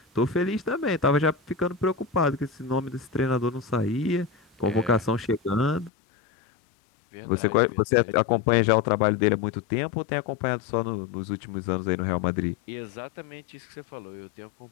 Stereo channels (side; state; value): right; drops out; at 5.9 s